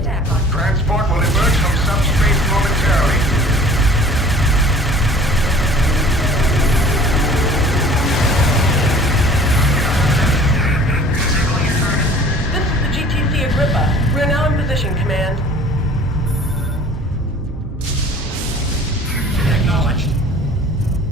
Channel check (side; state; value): both; normal; correlation 0.48